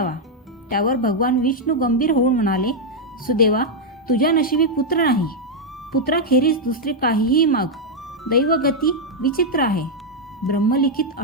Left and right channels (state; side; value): normal; both; correlation -0.01